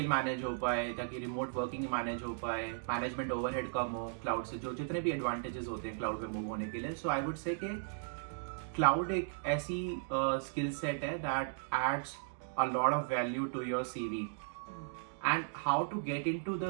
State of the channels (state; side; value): silent; left; digital silence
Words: मैनेज हो पाए, ताकि रिमोट वर्किंग मैनेज हो पाए, मैनेजमेंट ओवरहेड कम हो क्लाउड से, जो जितने भी एडवांटेजेस होते हैं क्लाउड पे मूव होने के लिए. सो आई वुड से कि क्लाउड एक ऐसी स्किल सेट है that adds a lot of value to your CV. And how to get into